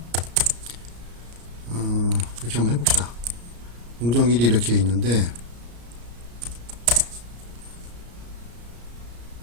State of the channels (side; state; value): left; late; 34 ms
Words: 이렇게 한번 해봅시다. 공정 1이 이렇게 있는데,